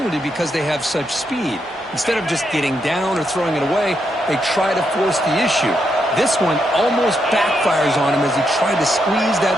because they have such speed. Instead of just getting down or throwing it away, they try to force the issue. This one almost backfires on him as he tried to squeeze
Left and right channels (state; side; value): normal; both; correlation 0.81